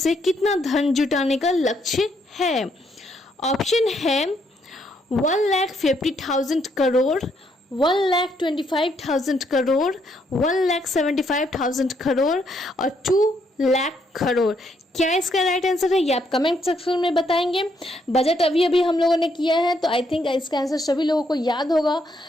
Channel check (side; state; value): both; normal; correlation 0.73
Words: कितना धन जुटाने का लक्ष्य है। ऑप्शन है 1,50,000 करोड़, 1,25,000 करोड़, 1,75,000 करोड़ और 2 लाख करोड़। क्या इसका राइट आंसर है, ये आप कमेंट सेक्शन में बताएंगे। बजट अभी हम लोगों ने किया है, तो आई थिंक इसका आंसर सभी लोगों को याद होगा।